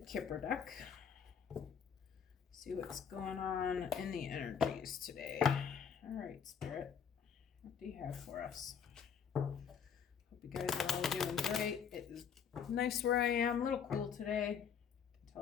deck. See what's going on in the energies today. All right, Spirit. What do you have for us? Hope you guys are all doing great. It is nice where I am. A little cool today. You can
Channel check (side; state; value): right; quieter; 7.3 dB